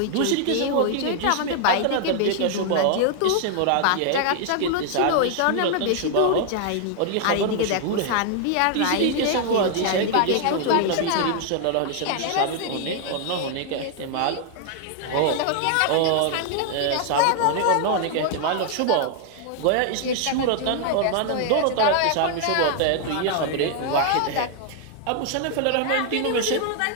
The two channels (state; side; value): different; both; correlation 0.00